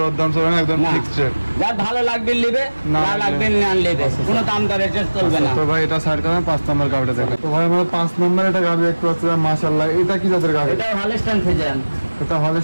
দাম চলবে না, একদম না। Fixed rate. যার ভালো লাগবে নেবে, না না লাগবে না নেবে, কোনো দাম দর এটা চলবে না। তো ভাই এটা সাইড করেন, 5 নম্বর গাড়িটা দেখেন। তো ভাই আমরা 5 নম্বর এটা গাড়ি দেখতে পাচ্ছি, মাশাআল্লাহ। এটা কি জাতের গাড়ি? এটা হলস্টাইন ফ্রিজিয়ান। এটা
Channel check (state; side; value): inverted; both; correlation -1.00